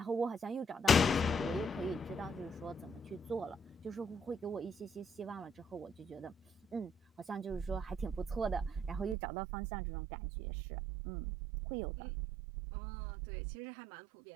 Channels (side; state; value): left; drops out; at 9.2 s